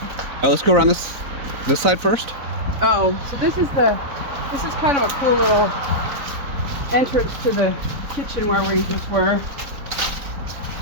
Oh, let's go around this side first. Oh, so this is kind of a cool little entrance to the kitchen where we just were.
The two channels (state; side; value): late; left; 4.0 ms